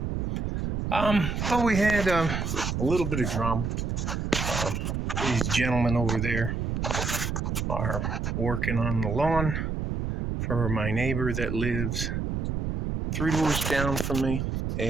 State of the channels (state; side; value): noise; right; rumble, 1 dB below the sound